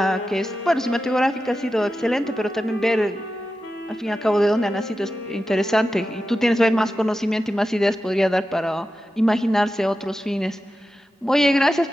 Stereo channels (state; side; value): normal; both; correlation 0.92